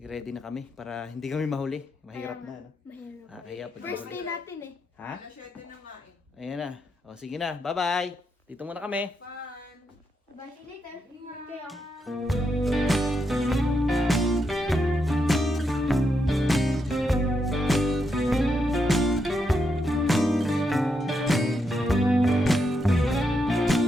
na kami para hindi kami mahuli. Mahirap na. Mahirap. Kaya pag First mahuli. day natin eh. Ha? Alas 7 na nga eh. Ayan na. O sige na. Bye-bye. Dito muna kami. Fun! Bye, see you later. Ingat kayo.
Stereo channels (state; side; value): normal; both; correlation 0.82